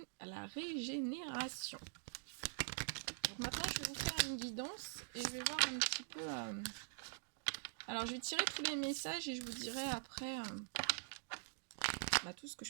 régénération. Donc maintenant, je vais vous faire une guidance et je vais voir un petit peu... Alors, je vais tirer tous les messages et je vous dirai après tout ce que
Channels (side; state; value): left; silent; digital silence